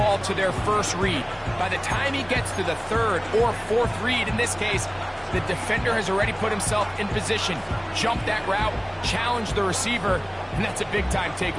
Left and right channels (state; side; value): identical; both; correlation 1.00